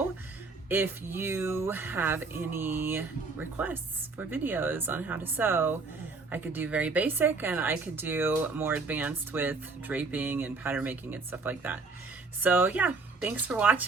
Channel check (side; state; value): left; quieter; 4.0 dB